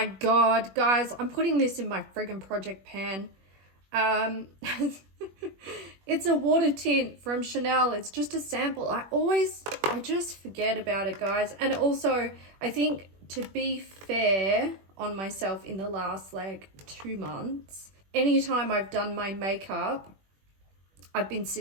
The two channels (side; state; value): left; late; 21 ms